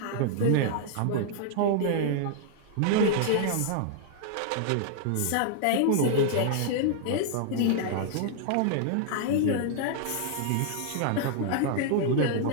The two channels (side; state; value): both; different; correlation -0.01